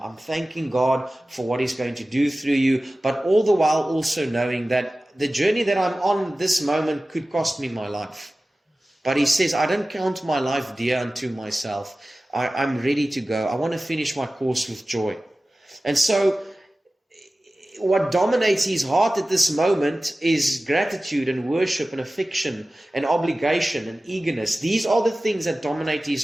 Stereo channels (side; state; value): both; normal; correlation 0.96